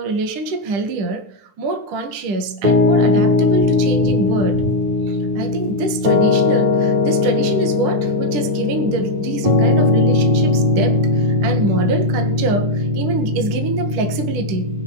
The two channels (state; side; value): late; left; 10 ms